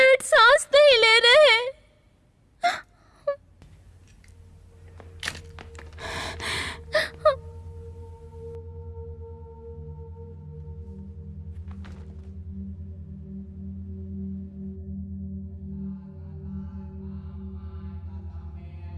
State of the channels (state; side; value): identical; both; correlation 1.00